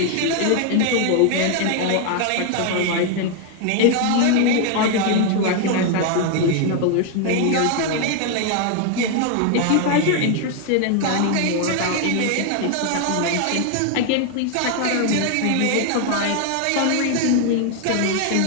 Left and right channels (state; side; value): different; both; correlation 0.01